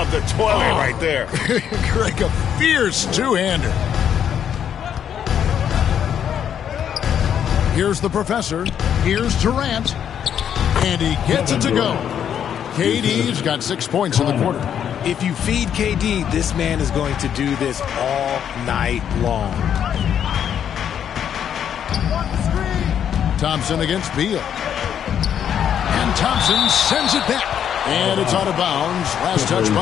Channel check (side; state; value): right; quieter; 9.0 dB